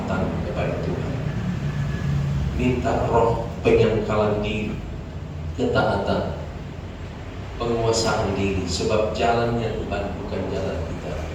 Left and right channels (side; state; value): both; identical; correlation 1.00